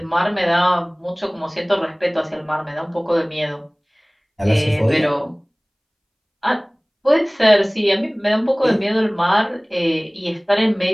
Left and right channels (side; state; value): both; identical; correlation 1.00